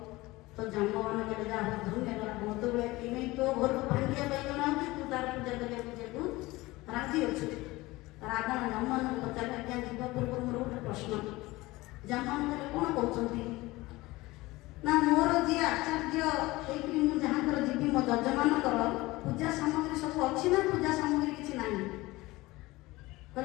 ତ ଜାମ୍ବବାନ କହିଲେ ଯାହା ହଉ ଧନ୍ୟବାଦ, ମୋତେ ବେଳେ କିଣି ତୋ ଘରକୁ ଭାଙ୍ଗିବା ପାଇଁ ଜଣେ ଅଛି, ତୁ ତାର ପୂଜା କରିବାକୁ ଯିବାକୁ ରାଜି ଅଛୁ। ରାବଣ ଜାମ୍ବବାନଙ୍କୁ ପଚାରିଲେ, ଆଜ୍ଞା ଯିବା ପୂର୍ବରୁ ମୋର ଗୋଟେ ପ୍ରଶ୍ନ। ଜାମ୍ବବାନ କହିଲେ କ'ଣ କହୁଛନ୍ତି? ନା ମୋର ଯିଏ ଆଚାର୍ଯ୍ୟ ହେଇକି ମୁଁ ଯାହାଙ୍କର ଯିବି, ମୋ ଯଜମାନଙ୍କର ପୂଜା ସାମଗ୍ରୀ ସବୁ ଅଛି ନା ପୂଜା ସାମଗ୍ରୀ କିଛି ନାହିଁ?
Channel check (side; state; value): right; quieter; 20.2 dB